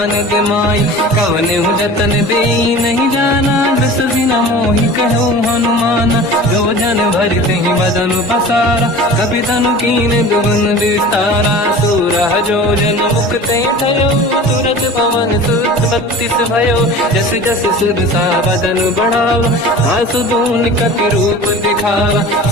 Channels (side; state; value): both; normal; correlation 0.39